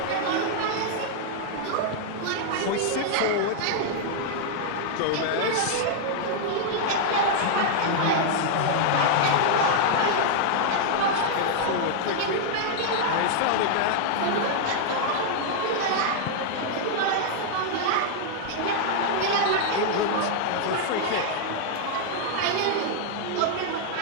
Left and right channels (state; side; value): different; both; correlation -0.01